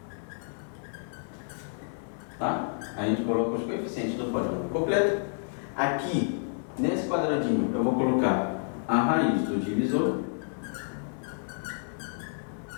tá? A gente coloca os coeficientes do polinômio completo. Aqui, nesse quadradinho, eu vou colocar a raiz do divisor.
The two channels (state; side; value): silent; right; digital silence